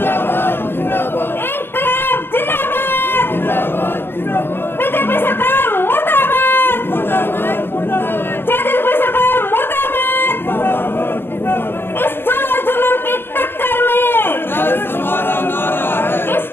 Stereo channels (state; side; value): late; right; 0.10 ms